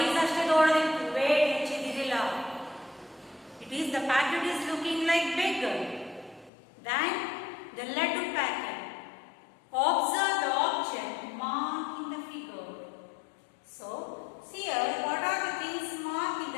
ಅಷ್ಟೇ ದೊಡ್ಡದಿತ್ತು, weight ಹೆಚ್ಚಿದಿರಲಿಲ್ಲ. It is the packet is looking like bigger than the laddu packet. Observe the object marked in the figure. So, see here, what are the things marked in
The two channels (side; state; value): right; drops out; at 6.5 s